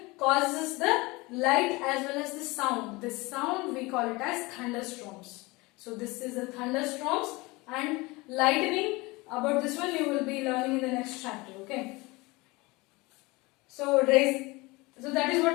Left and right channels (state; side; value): quieter; right; 23.4 dB